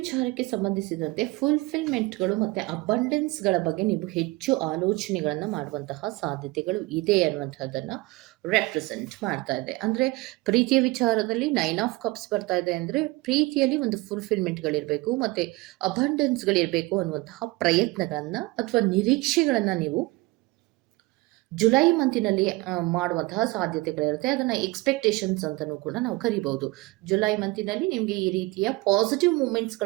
ಸಂಬಂಧಿಸಿದಂತೆ ಫುಲ್ಫಿಲ್ಮೆಂಟ್ಗಳು ಮತ್ತು ಅಬಂಡೆನ್ಸ್ಗಳ ಬಗ್ಗೆ ನೀವು ಹೆಚ್ಚು ಆಲೋಚನೆಗಳನ್ನು ಮಾಡುವಂತಹ ಸಾಧ್ಯತೆಗಳು ಇದೆ ಅನ್ನುವಂಥದ್ದನ್ನು ರೆಪ್ರೆಸೆಂಟ್ ಮಾಡ್ತಾ ಇದೆ. ಅಂದರೆ ಪ್ರೀತಿಯ ವಿಚಾರದಲ್ಲಿ 9 ಆಫ್ ಕಪ್ಸ್ ಬರ್ತಾ ಇದೆ ಅಂದರೆ ಪ್ರೀತಿಯಲ್ಲಿ ಒಂದು ಫುಲ್ಫಿಲ್ಮೆಂಟ್ಗಳಿರಬೇಕು ಮತ್ತು ಅಬಂಡೆನ್ಸ್ಗಳಿರಬೇಕು ಅನ್ನುವಂತಹ ಪ್ರಯತ್ನಗಳನ್ನು ಅಥವಾ ನಿರೀಕ್ಷೆಗಳನ್ನು ನೀವು ಜುಲೈ ಮಂತಿನಲ್ಲಿ ಮಾಡುವಂತಹ ಸಾಧ್ಯತೆಗಳಿರುತ್ತೆ. ಅದನ್ನು ಎಕ್ಸ್ಪೆಕ್ಟೇಷನ್ಸ್ ಅಂತಲೂ ಕೂಡ ನಾವು ಕರಿಬಹುದು. ಜುಲೈ ಮಂತಿನಲ್ಲಿ ನಿಮಗೆ ಈ ರೀತಿಯ ಪಾಸಿಟಿವ್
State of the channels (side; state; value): left; quieter; 22.3 dB